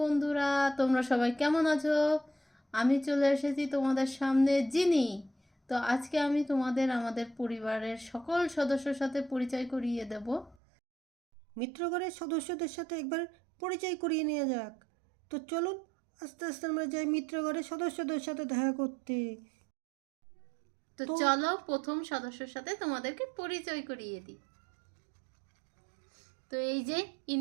তোমরা সবাই কেমন আছো? আমি চলে এসেছি তোমাদের সামনে জিনি। তো আজকে আমি তোমাদের আমাদের পরিবারের সকল সদস্যর সাথে পরিচয় করিয়ে দেব। মিত্রগণের সদস্যদের সাথে একবার পরিচয় করিয়ে নেওয়া যাক। তো চলুন আস্তে আস্তে আমরা যাই মিত্রগণের সদস্যদের সাথে দেখা করতে। তো তো চলো প্রথম সদস্যর সাথে তোমাদেরকে পরিচয় করিয়ে দিই। তো এই যে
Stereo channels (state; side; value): drops out; left; at 10.6 s